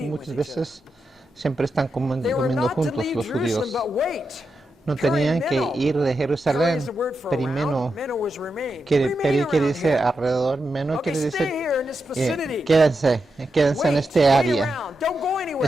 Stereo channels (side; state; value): both; normal; correlation 0.87